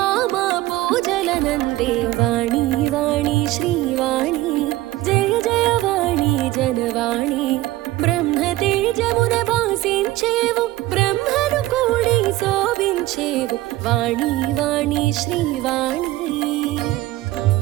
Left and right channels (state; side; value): quieter; left; 17.0 dB